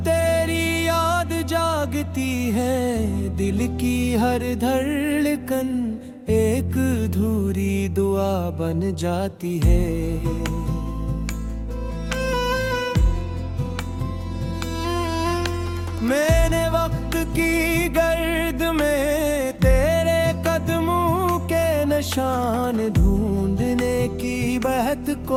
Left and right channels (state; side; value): identical; both; correlation 1.00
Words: तेरी याद जागती है, दिल की हर धड़कन एक अधूरी दुआ बन जाती है। मैंने वक्त की गर्द में तेरे कदमों के निशान ढूंढने की बहुत